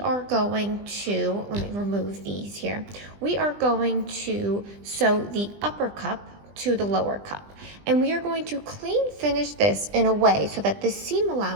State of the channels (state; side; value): late; left; 20 ms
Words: going to, let me remove these here. We are going to sew the upper cup to the lower cup. And we are going to clean finish this in a way so that the seam